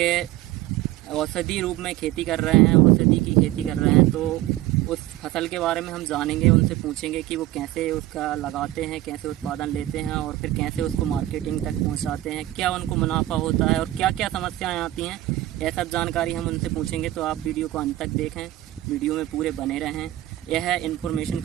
औषधि रूप में खेती कर रहे हैं, औषधि की खेती कर रहे हैं। तो उस फसल के बारे में हम जानेंगे, उनसे पूछेंगे कि वो कैसे उसका लगाते हैं, कैसे उत्पादन लेते हैं और फिर कैसे उसको मार्केटिंग तक पहुँचाते हैं, क्या उनको मुनाफा होता है और क्या क्या समस्याएँ आती हैं। यह सब जानकारी हम उनसे पूछेंगे, तो आप वीडियो को अंत तक देखें, वीडियो में पूरे बने रहें। यह इन्फॉर्मेशन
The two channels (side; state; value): left; quieter; 15.5 dB